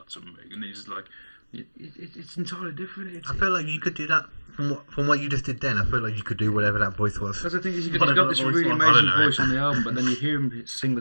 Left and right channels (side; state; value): both; inverted; correlation -1.00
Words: something, and he's just like, it's entirely different. I feel like you could do that from what you just did then. I feel like you could do whatever that voice was. Because I think he's got this really amazing voice on the album, but then you hear him sing the